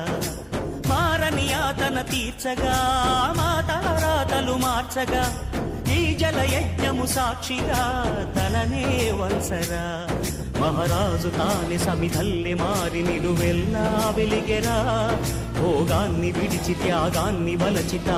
మారని యాతన తీర్చగా మాతారాతలు మార్చగా ఈ జల యజ్ఞము సాక్షిగా తలనే వంచరా మహారాజు తాని సమిధల్లి మారి నిలువెల్లా వెలిగెరా భోగాన్ని విడిచి త్యాగాన్ని వలచి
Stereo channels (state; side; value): identical; both; correlation 1.00